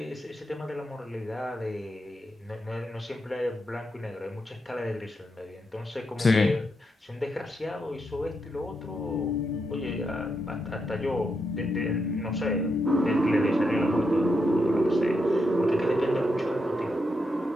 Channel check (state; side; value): normal; both; correlation 0.83